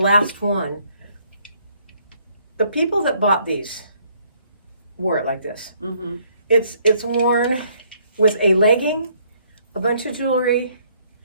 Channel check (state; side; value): inverted; both; correlation -0.66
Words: one. The people that bought these wore it like this. Mm-hmm. It's worn with a legging, a bunch of jewelry,